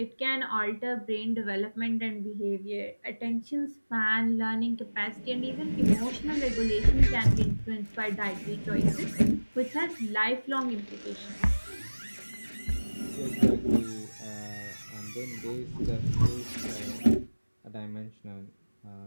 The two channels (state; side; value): inverted; both; correlation -1.00